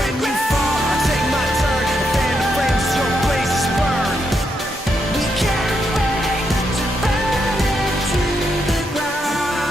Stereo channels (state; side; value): normal; both; correlation 0.81